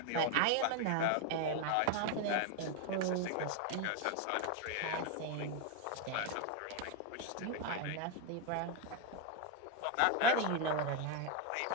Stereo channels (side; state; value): both; different; correlation 0.01